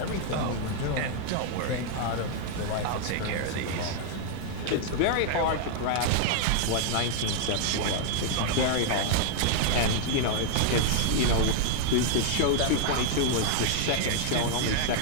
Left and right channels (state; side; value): different; both; correlation 0.00